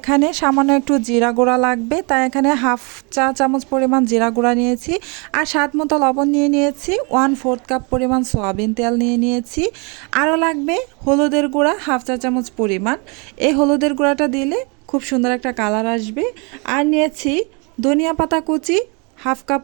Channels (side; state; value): left; quieter; 32.4 dB